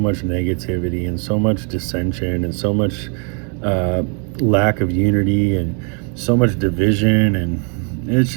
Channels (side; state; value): left; quieter; 37.6 dB